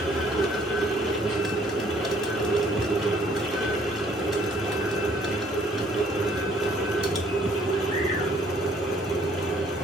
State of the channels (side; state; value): both; normal; correlation 0.61